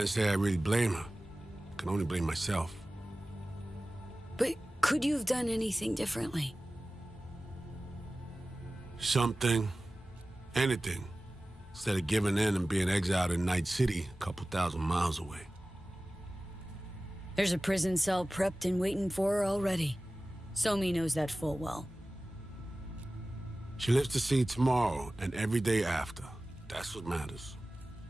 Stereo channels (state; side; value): normal; both; correlation 0.97